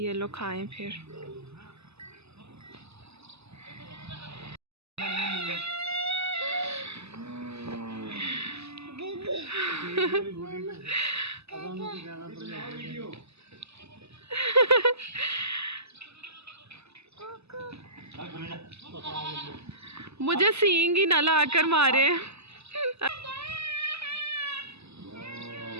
लोग खाएं फिर। मुझे सींग ही ना लाकर मारे।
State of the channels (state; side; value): late; left; 0.79 ms